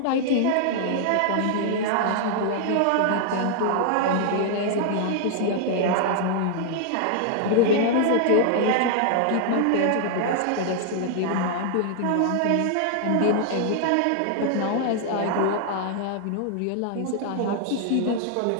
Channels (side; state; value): both; different; correlation 0.00